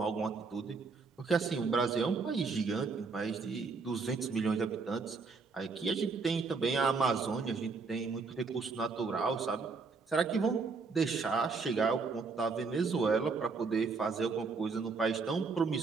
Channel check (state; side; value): quieter; left; 4.6 dB